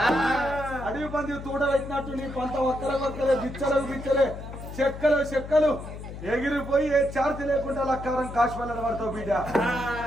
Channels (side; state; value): left; noise; hum, 11 dB below the sound